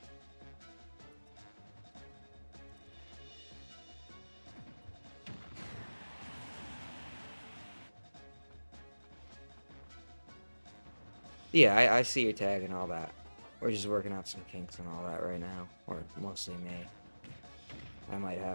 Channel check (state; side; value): inverted; both; correlation -1.00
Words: Yeah, I see your tag and all that. We're just working out some kinks and all that right now. Or mostly me. I might